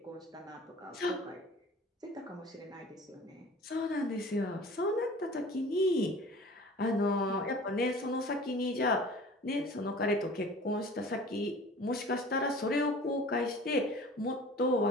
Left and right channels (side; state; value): both; normal; correlation 0.44